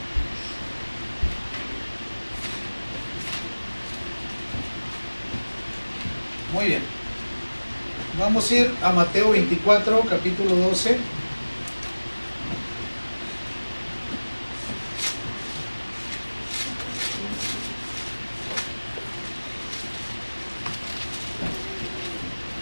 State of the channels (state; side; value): inverted; both; correlation -1.00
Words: Muy bien. Vamos a ir a Mateo 24, capítulo 12.